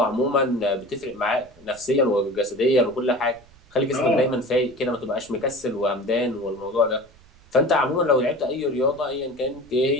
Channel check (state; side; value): noise; right; rumble, 27 dB below the sound